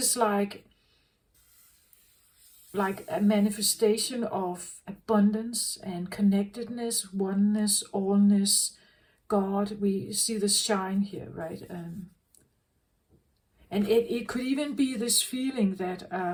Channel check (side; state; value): both; identical; correlation 1.00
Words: like a manifestation of abundance and connectedness, oneness, allness, God. We see the shine here, right? And it could even be this feeling that